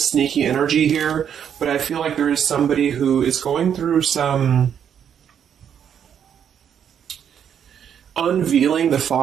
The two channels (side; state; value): left; quieter; 8.5 dB